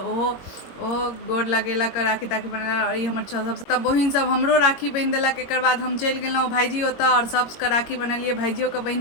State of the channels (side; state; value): right; late; 22 ms